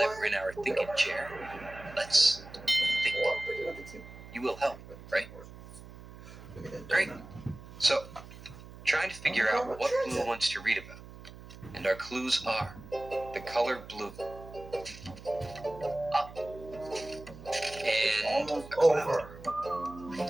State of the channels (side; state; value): right; noise; hum, 16 dB below the sound